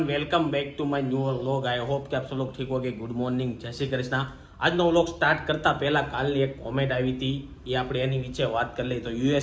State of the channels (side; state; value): both; identical; correlation 1.00